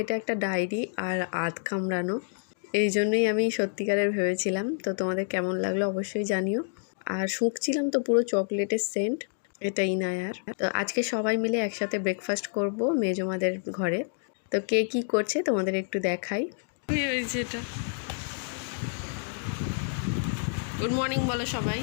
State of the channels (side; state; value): right; silent; 59 dB below the other